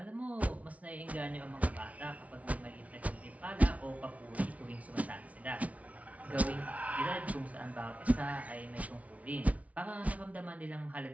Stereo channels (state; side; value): late; left; 0.067 ms